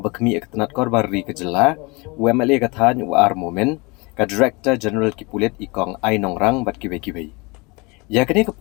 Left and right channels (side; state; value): right; quieter; 27.1 dB